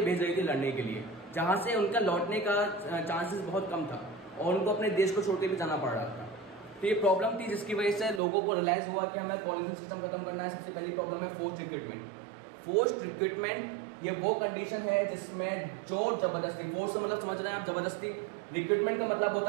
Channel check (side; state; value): left; drops out; at 8.2 s